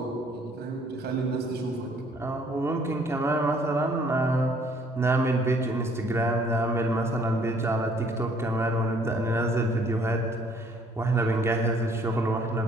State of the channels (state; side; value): normal; both; correlation 0.61